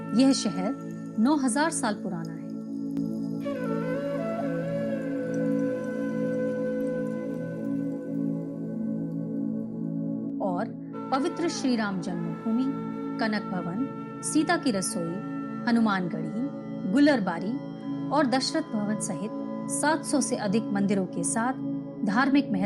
यह शहर 9000 साल पुराना है। और पवित्र श्री राम जन्मभूमि, कनक भवन, सीता की रसोई, हनुमानगढ़ी, गुलरबारी और दशरथ भवन सहित 700 से अधिक मंदिरों के साथ धार्मिक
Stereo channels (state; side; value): identical; both; correlation 1.00